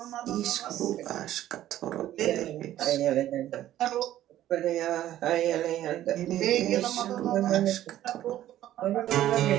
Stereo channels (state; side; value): quieter; left; 13.0 dB